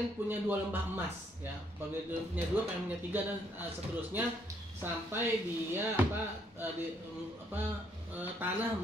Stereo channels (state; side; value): normal; both; correlation 0.70